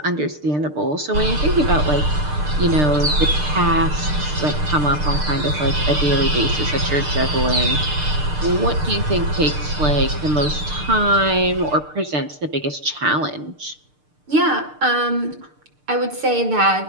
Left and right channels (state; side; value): late; left; 6.7 ms